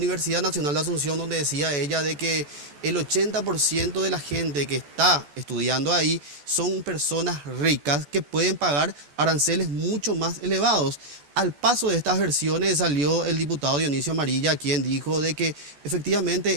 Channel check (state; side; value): late; left; 14 ms